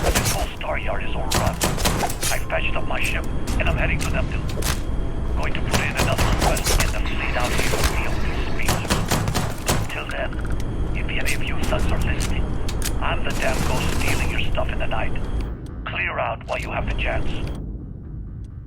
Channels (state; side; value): identical; both; correlation 1.00